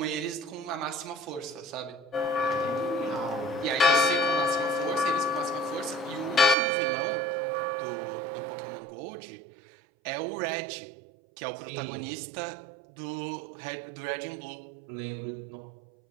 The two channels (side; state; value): left; drops out; at 6.6 s